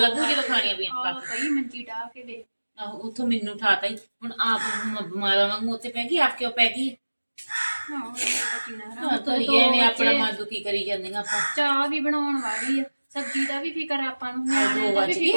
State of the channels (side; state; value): both; inverted; correlation -1.00